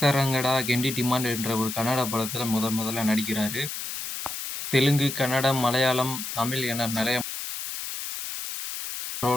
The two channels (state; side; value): noise; left; hiss, 6 dB below the sound